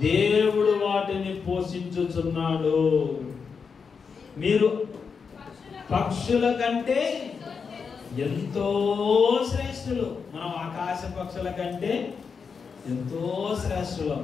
దేవుడు వాటిని పోషించుచున్నాడు. మీరు పక్షుల కంటే ఎంతో శ్రేష్ఠులు. మనం ఆకాశ పక్షుల కంటే ఎంతో శ్రేష్ఠులు.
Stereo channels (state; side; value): quieter; right; 5.7 dB